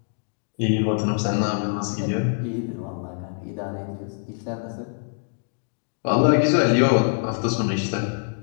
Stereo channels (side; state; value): right; silent; digital silence